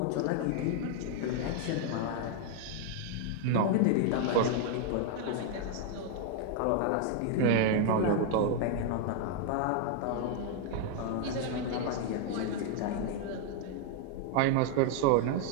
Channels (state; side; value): different; both; correlation 0.00